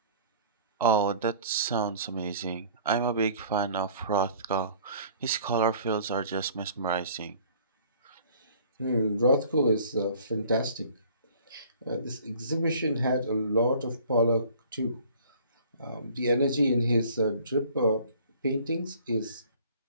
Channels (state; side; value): inverted; both; correlation -0.51